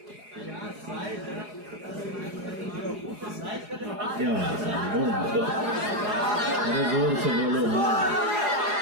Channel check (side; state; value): left; late; 4.8 ms